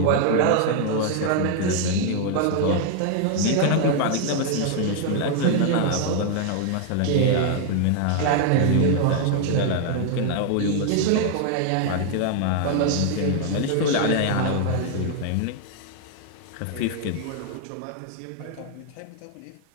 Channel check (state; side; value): different; both; correlation 0.00